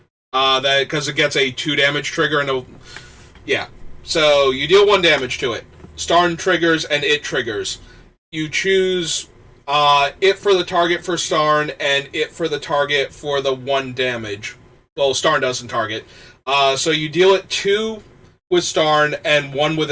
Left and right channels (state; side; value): identical; both; correlation 1.00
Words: Because it gets a 2 damage trigger and yeah. So you deal 1 damage to it. Starn triggers and it triggers. You choose it for the target for Starn and it for the target for the 1 damage. Well, Starn doesn't target. So you deal it 2 with Starn and 1 with